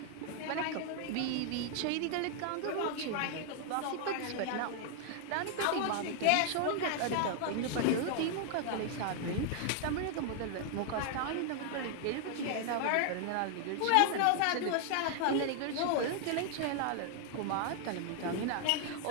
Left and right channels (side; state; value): both; different; correlation 0.00